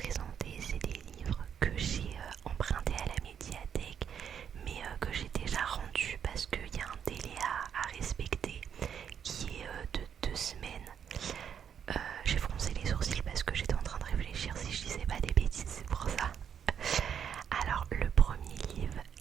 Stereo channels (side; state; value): left; quieter; 8.1 dB